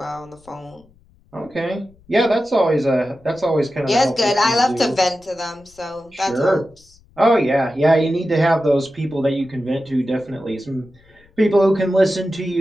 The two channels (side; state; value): left; noise; rumble, 30 dB below the sound